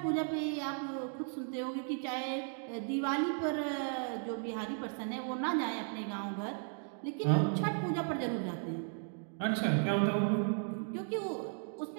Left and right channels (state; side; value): silent; left; 54 dB below the other